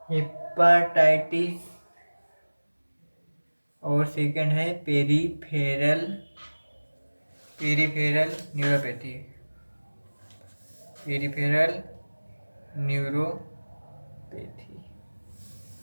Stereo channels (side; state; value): both; inverted; correlation -1.00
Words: हेपाटाइटिस और सेकंड है peripheral neuropathy. Peripheral neuropathy.